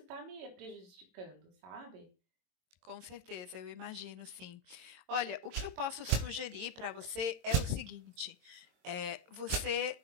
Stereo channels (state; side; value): late; left; 22 ms